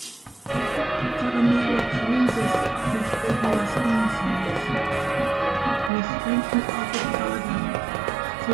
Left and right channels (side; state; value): left; drops out; at 5.9 s